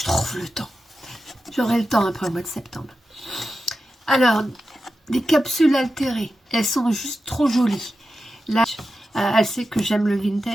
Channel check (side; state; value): both; normal; correlation 0.92